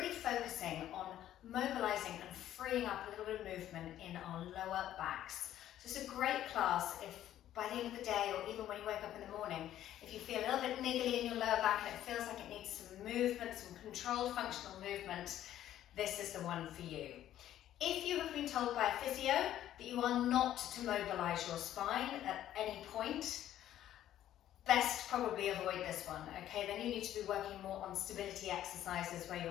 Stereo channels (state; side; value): quieter; right; 12.2 dB